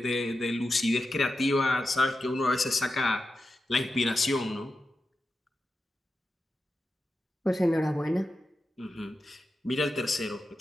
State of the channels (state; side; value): normal; both; correlation 0.91